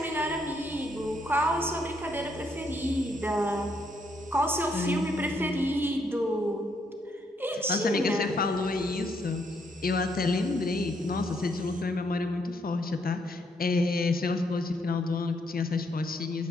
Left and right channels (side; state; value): both; normal; correlation 0.74